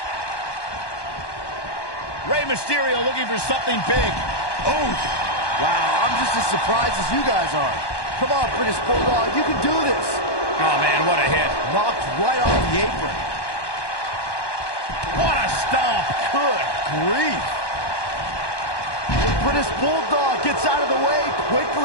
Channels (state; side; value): late; right; 1.1 ms